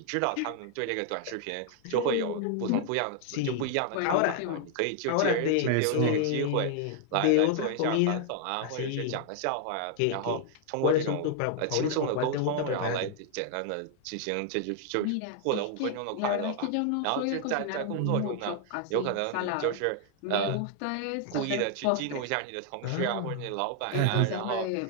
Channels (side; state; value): both; different; correlation 0.00